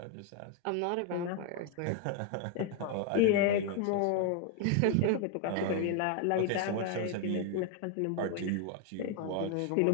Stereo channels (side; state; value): both; different; correlation 0.00